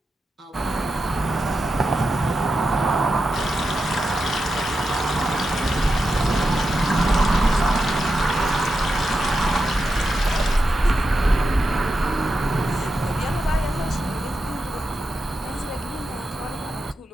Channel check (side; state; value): both; normal; correlation 0.88